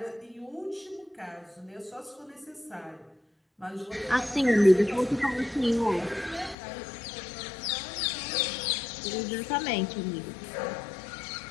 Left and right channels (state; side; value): drops out; right; at 6.6 s